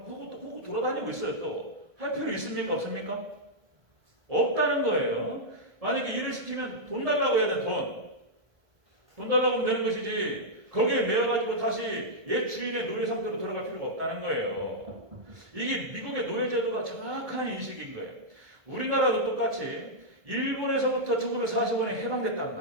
호구 돌아다니고 있어요. 또 할 필요 있습니까? 없습니까? 없다는 거예요. 만약에 일을 시키면 돈 달라고 해야 돼. 돈 달라고 하면 되는 것이지 거기에 매여가지고 다시 옛 주인의 노예 상태로 돌아갈 필요가 없다는 거예요. 이게 미국의 노예제도가 정확한 인식인 거예요. 우리나라도 똑같이 일본에서부터 1945년에 해방됐다는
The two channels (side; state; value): left; late; 1.6 ms